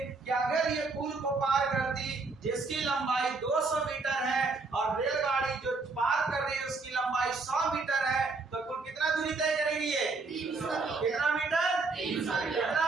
कि अगर ये पुल को पार करती जिसकी लंबाई 200 मीटर है और रेलगाड़ी जो पार कर रही है उसकी लंबाई 100 मीटर है, तो कुल कितना दूरी तय करेगी ये? 300। कितना मीटर? 300।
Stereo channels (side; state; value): left; quieter; 3.9 dB